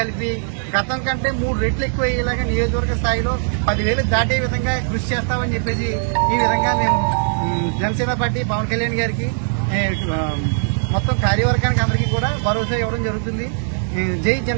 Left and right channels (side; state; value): left; silent; 59 dB below the other